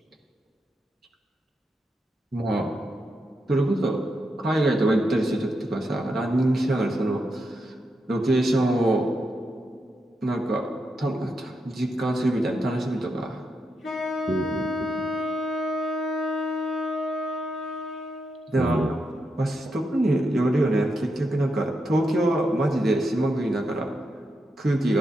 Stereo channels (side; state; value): both; normal; correlation 0.84